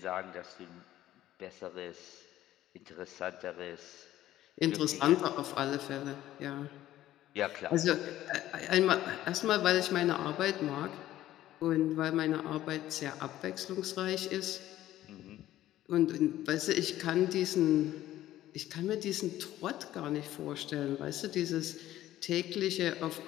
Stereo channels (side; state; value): right; quieter; 13.8 dB